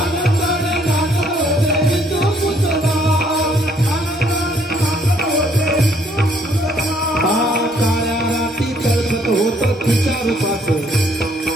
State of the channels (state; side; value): normal; both; correlation 0.66